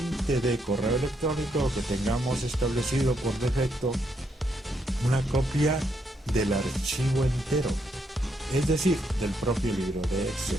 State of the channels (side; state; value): both; normal; correlation 0.77